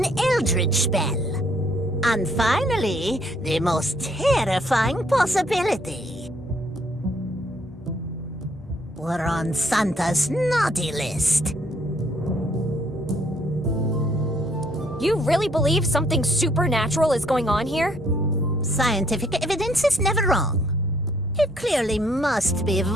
eldritch spell. And finally, the most terrifying possibility. We're on Santa's naughty list. You really believe something supernatural is going on here? Scientific evidence is never wrong. It clearly must be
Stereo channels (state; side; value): normal; both; correlation 0.66